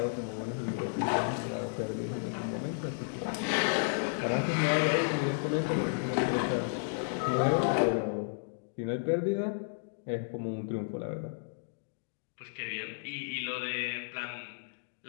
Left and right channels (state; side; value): silent; right; digital silence